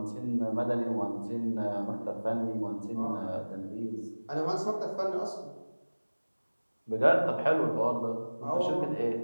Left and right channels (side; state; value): both; inverted; correlation -1.00